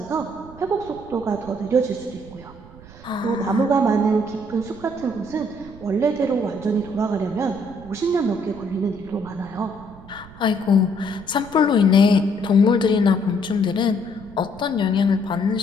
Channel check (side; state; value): right; noise; rumble, 19 dB below the sound